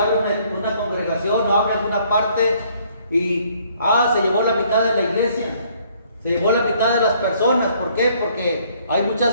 una congregación o abre alguna parte y se llevó la mitad de la iglesia, se llevó la mitad de las personas. ¿Por qué? Porque hay muchas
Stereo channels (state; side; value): inverted; both; correlation -0.63